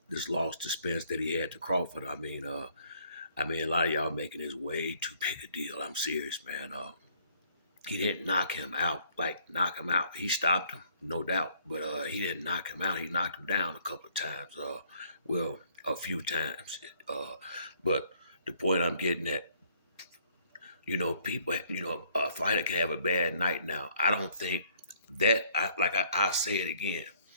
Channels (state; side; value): inverted; both; correlation -0.63